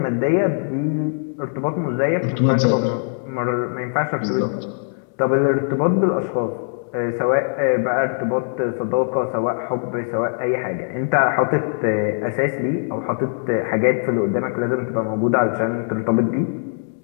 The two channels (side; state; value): right; silent; digital silence